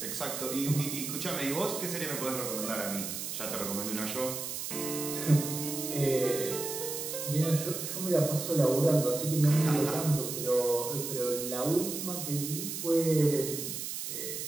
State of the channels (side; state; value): right; noise; hiss, 5 dB below the sound